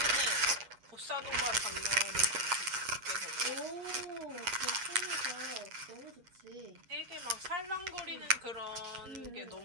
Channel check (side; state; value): left; late; 8.4 ms